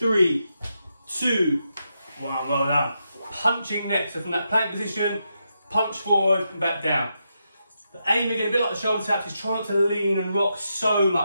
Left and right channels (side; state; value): both; inverted; correlation -0.84